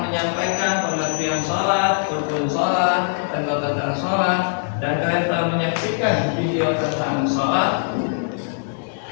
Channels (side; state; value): right; silent; digital silence